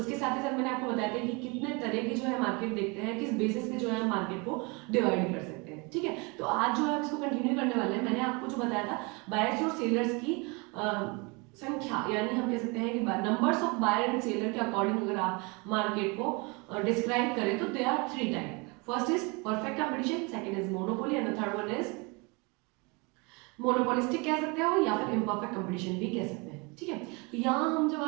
साथ ही साथ मैंने आपको बताया था कि कितने तरह की जो है मार्केट देखते हैं, किस बेसिस पे जो है हम मार्केट को डिवाइड कर सकते हैं। ठीक है, तो आज जो है हम इसको कंटिन्यू करने वाले हैं। मैंने आपको जो बताया था बायर्स और सेलर्स की संख्या, यानी हम कह सकते हैं कि numbers of buyer and seller के अकॉर्डिंग अगर आप मार्केट को डिस्क्राइब करें तो they are three type. First is perfect competition, second is monopoly and the third one is monopolistic कह सकते हो या फिर इम्परफेक्ट कंपटीशन भी कह सकते हैं। ठीक है, तो यहाँ हम जब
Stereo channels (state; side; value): quieter; left; 29.2 dB